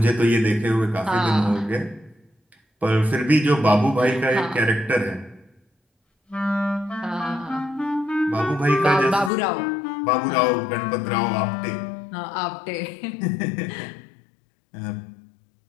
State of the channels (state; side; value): drops out; right; at 9.3 s